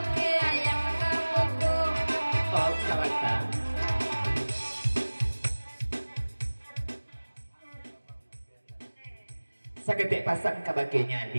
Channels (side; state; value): both; inverted; correlation -1.00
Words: ayam kapoko. Oh salata saketik pasang kabagenya